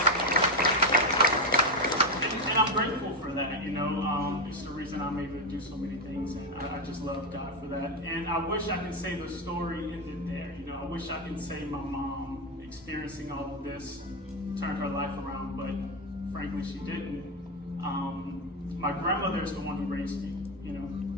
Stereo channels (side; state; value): both; normal; correlation 0.10